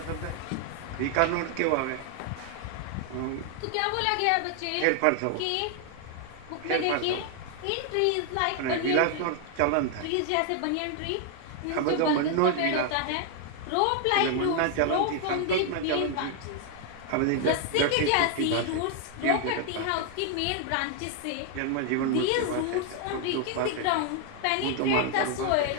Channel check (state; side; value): different; both; correlation 0.00